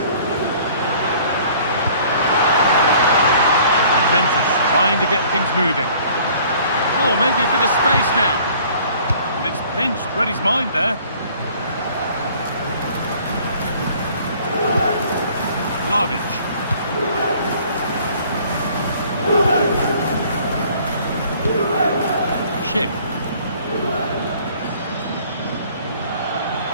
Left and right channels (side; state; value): both; inverted; correlation -0.54